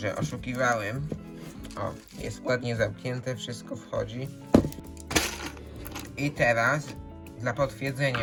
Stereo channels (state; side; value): identical; both; correlation 1.00